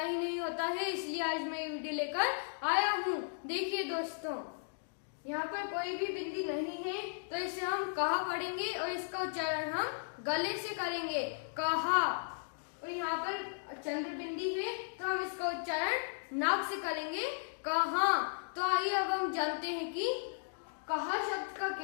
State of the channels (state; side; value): silent; right; digital silence